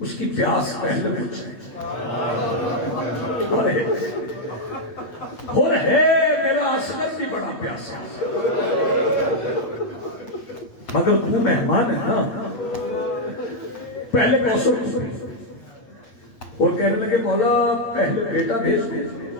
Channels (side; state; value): right; late; 8.3 ms